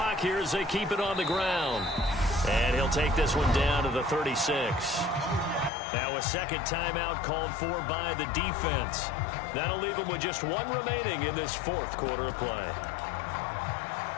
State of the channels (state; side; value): drops out; right; at 5.7 s